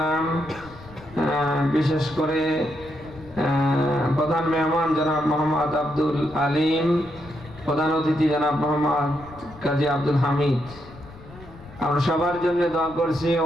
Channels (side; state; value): left; noise; rumble, 19 dB below the sound